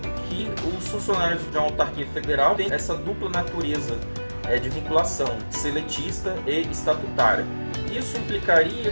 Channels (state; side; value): inverted; both; correlation -1.00